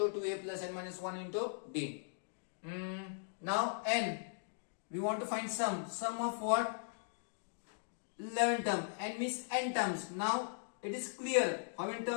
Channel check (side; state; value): right; silent; digital silence